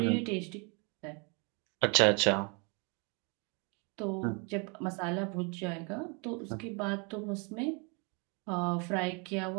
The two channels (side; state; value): left; quieter; 33.7 dB